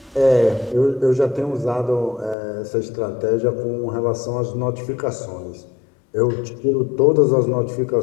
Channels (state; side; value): drops out; right; at 2.4 s